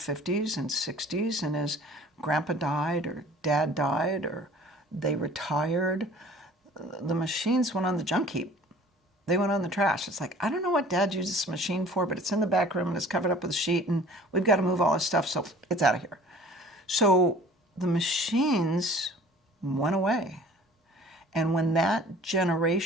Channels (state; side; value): normal; both; correlation 0.49